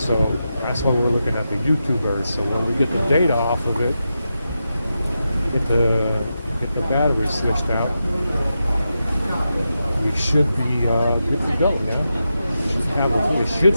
that's why we're looking at the YouTubers. So when we get the data off of it, get the get the battery switched out, we should be good to go. Yeah, it should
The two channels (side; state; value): both; inverted; correlation -0.88